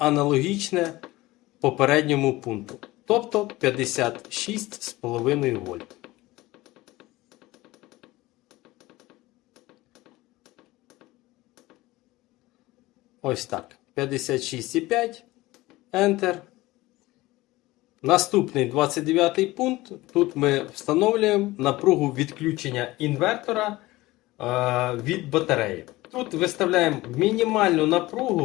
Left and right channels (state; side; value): quieter; right; 19.0 dB